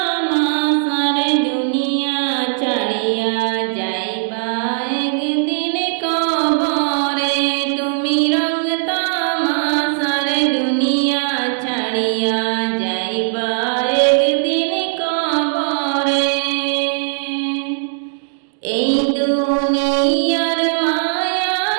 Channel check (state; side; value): silent; left; digital silence